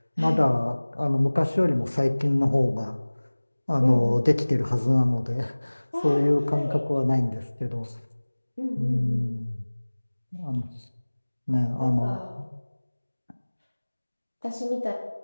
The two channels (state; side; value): inverted; both; correlation -1.00